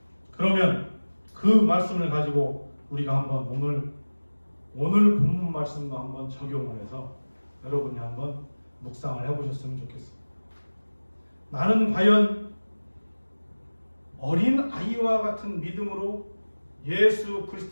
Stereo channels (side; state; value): both; inverted; correlation -1.00